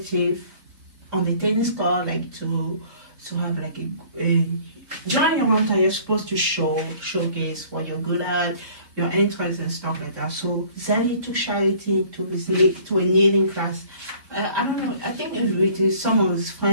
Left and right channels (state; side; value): late; left; 3.7 ms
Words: on the tennis court, like to have like a during your hometown, you're supposed to showcase what you're good at, your interests and stuff like that. So Xavier took Charity to a kneeling class. I don't know. I think it's with some of his